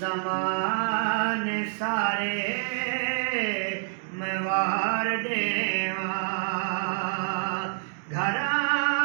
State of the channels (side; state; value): left; silent; digital silence